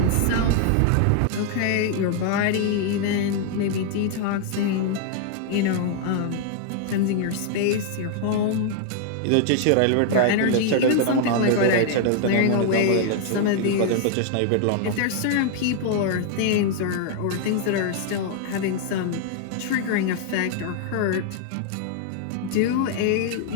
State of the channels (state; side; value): different; both; correlation 0.00